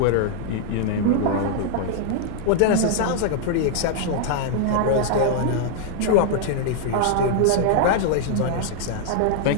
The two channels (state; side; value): different; both; correlation -0.01